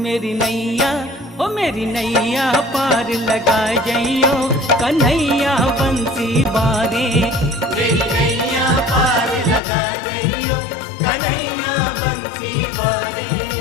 मेरी नैया, ओ मेरी नैया पार लगा जइयो कन्हैया बंसी वारे। मेरी नैया पार लगा जइयो कन्हैया बंसी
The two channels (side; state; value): right; drops out; at 9.6 s